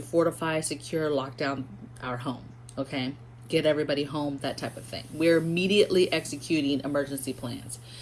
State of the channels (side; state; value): both; identical; correlation 1.00